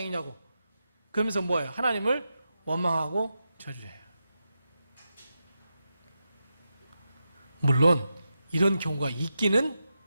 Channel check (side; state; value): both; inverted; correlation -0.89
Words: 그러면서 뭐예요? 하나님을 원망하고 저주해요. 물론 이런 경우가 있기는